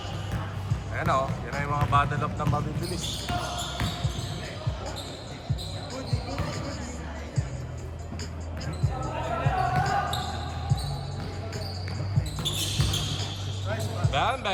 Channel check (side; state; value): both; identical; correlation 1.00